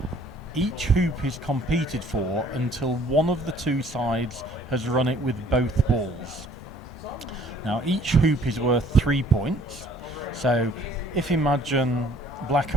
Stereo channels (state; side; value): normal; both; correlation 0.57